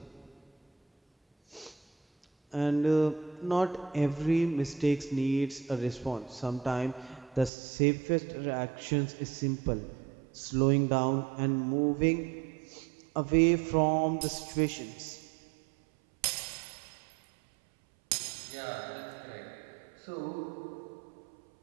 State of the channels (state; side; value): drops out; left; at 7.5 s